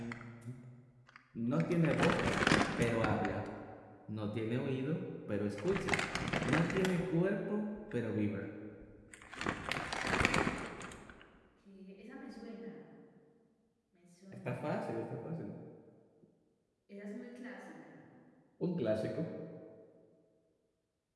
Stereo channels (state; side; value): identical; both; correlation 1.00